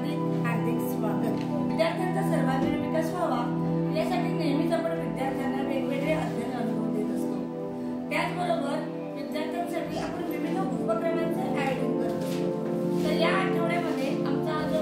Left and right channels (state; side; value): identical; both; correlation 1.00